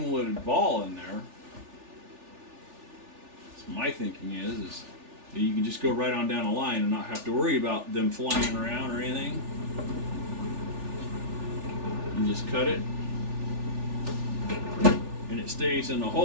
ball in there, my thinking is You can just go right on down the line and not have to worry about them flying around or anything. And just cut it. And it stays in the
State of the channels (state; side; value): late; left; 3.4 ms